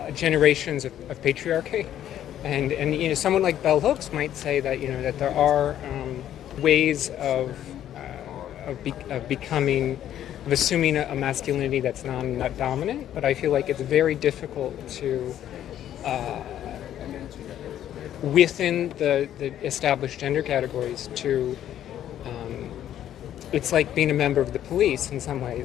generations of patriarchy, and you know, someone like Bell Hooks might say that that there are ways of assuming a masculinity that's not dominant, but I feel like it's very difficult to within the established gender categories to it's like being a member of the police in some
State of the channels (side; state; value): right; quieter; 11.2 dB